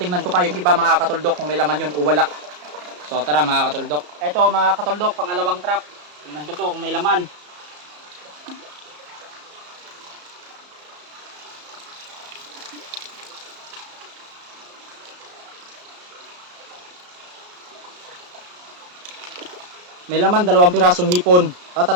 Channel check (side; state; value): left; late; 34 ms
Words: ko pa yung iba mga katuldok kung may laman yun o wala. So tara mga katuldok. Ito mga katuldok, pangalawang trap. Tingnan ko to kung may laman. May laman, 2 pirasong hipon.